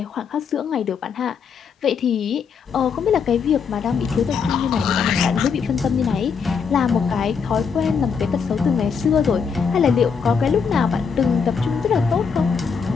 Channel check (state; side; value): quieter; right; 6.1 dB